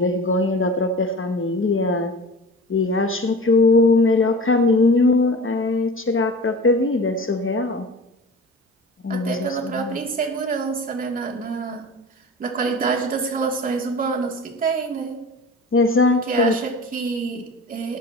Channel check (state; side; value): normal; both; correlation 0.37